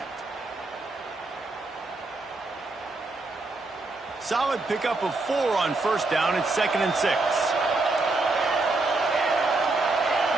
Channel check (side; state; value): left; quieter; 3.2 dB